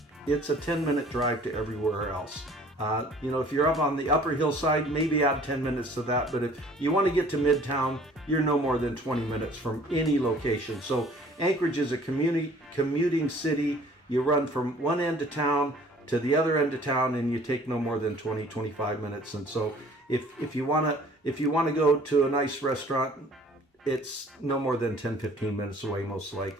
a 10-minute drive to everywhere else. If you're up on the upper hillside, maybe add 10 minutes to that. But if you want to get to Midtown, you're no more than 20 minutes from any location. So Anchorage is a commuting city. You run from one end of town to the other end of town, and you take no more than 20-25 minutes. And so if you want to go to a nice restaurant, it's no more than 10-15 minutes away, most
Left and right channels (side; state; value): both; normal; correlation 0.53